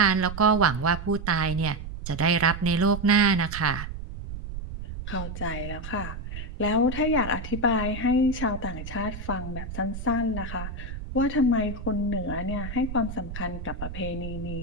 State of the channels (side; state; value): right; noise; rumble, 8 dB below the sound